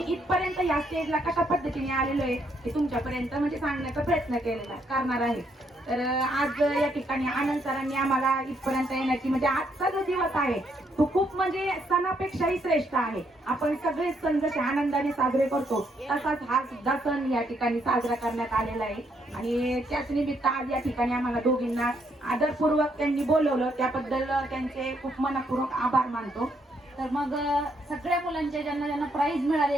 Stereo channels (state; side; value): normal; both; correlation 0.73